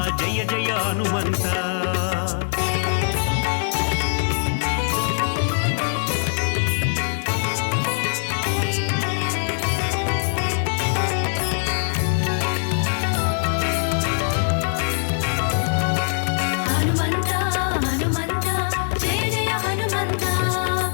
ಜಯ ಜಯ ಹನುಮಂತ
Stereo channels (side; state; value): right; silent; 63 dB below the other